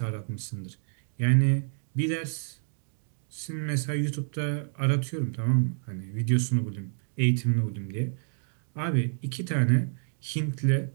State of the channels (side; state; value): left; silent; digital silence